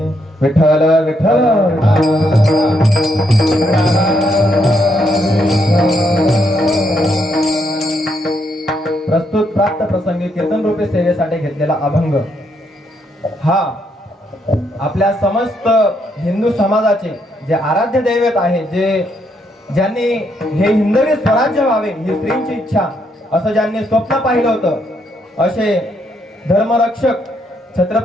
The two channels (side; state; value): both; normal; correlation 0.75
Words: विठ्ठल विठ्ठल प्रस्तुत प्राप्त प्रसंगी कीर्तन रूपे सेवेसाठी घेतलेला अभंग हा आपल्या समस्त हिंदू समाजाचे जे आराध्य दैवत आहे, ज्यांनी हे हिंदवी स्वराज्य व्हावे ही स्त्रींची इच्छा असं ज्यांनी स्वप्न पाहिलं होतं, असे धर्मरक्षक